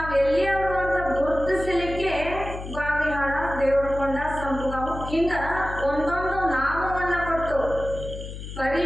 ಎಲ್ಲಿಯವರು ಅಂತ ಗುರುತಿಸಲಿಕ್ಕೆ ಬಾವಿಹಾಳ, ದೇವರಕೊಂಡ, ಸಂಪುಗಾವು ಹಿಂಗ ಒಂದೊಂದು ನಾಮವನ್ನ ಕೊಟ್ಟು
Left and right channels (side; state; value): left; noise; hum, 10 dB below the sound